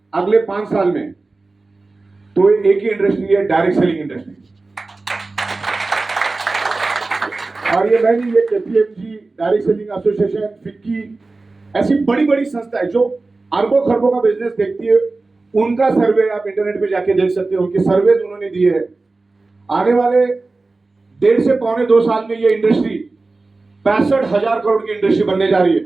अगले 5 साल में, तो एक ही इंडस्ट्री है, डायरेक्ट सेलिंग इंडस्ट्री। और ये मैं नहीं, ये KPMG, direct selling association, FICCI, ऐसी बड़ी बड़ी संस्थाएं जो अरबों खरबों का बिजनेस देखती है, उनका सर्वे आप इंटरनेट पे जाके देख सकते हो। उनके सर्वे उन्होंने दिए हैं। आने वाले 1.5 से 2 साल में ये इंडस्ट्री 65,000 करोड़ की इंडस्ट्री बनने जा रही है।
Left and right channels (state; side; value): quieter; left; 3.5 dB